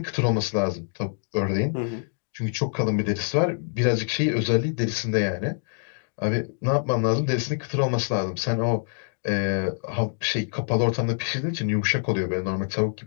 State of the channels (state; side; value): silent; right; digital silence